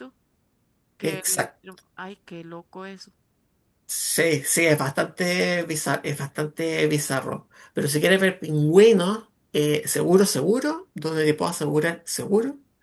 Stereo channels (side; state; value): both; identical; correlation 1.00